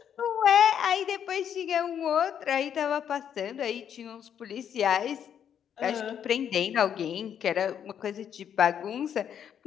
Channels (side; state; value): right; quieter; 8.8 dB